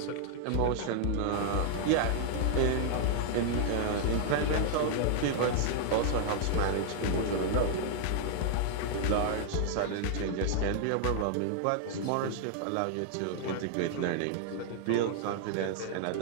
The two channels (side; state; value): both; different; correlation -0.01